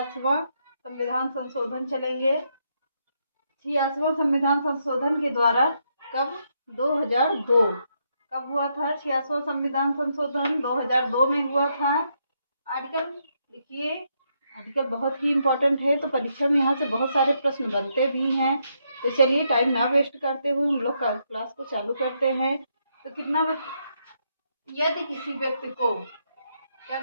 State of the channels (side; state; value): both; inverted; correlation -0.78